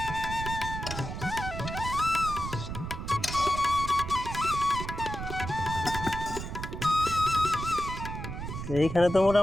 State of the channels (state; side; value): noise; right; rumble, 6 dB below the sound